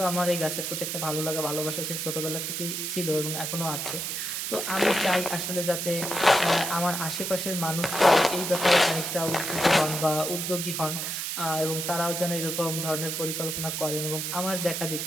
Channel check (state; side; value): noise; right; hiss, 3 dB below the sound